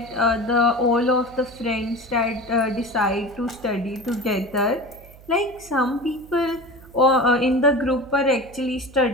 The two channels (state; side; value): noise; right; hum, 22 dB below the sound